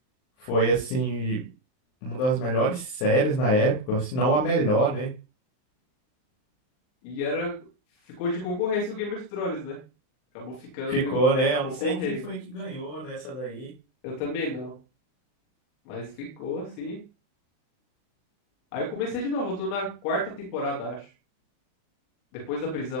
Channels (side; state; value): right; late; 39 ms